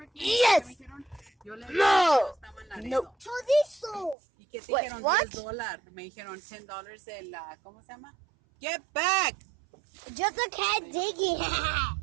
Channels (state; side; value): drops out; left; at 4.2 s